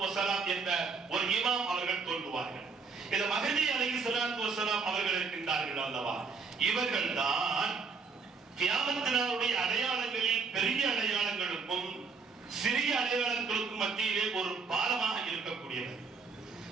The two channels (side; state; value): left; quieter; 4.9 dB